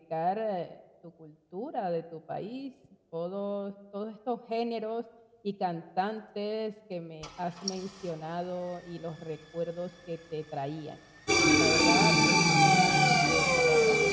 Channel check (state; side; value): identical; both; correlation 1.00